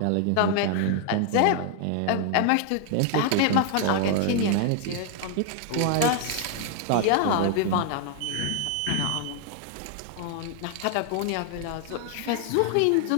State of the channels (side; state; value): both; different; correlation 0.00